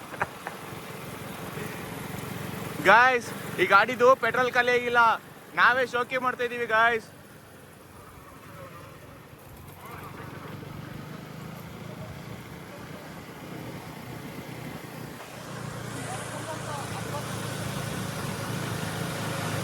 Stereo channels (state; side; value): identical; both; correlation 1.00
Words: Guys, ಈ ಗಾಡಿದು ಪೆಟ್ರೋಲ್ ಖಾಲಿ ಆಗಿಲ್ಲ, ನಾವೇ ಶೋಕಿ ಮಾಡ್ತಾ ಇದೀವಿ ಗಾಯ್ಸ್.